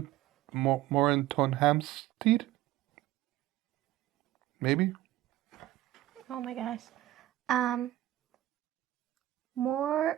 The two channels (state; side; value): quieter; left; 15.0 dB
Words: Maybe? Oh my gosh.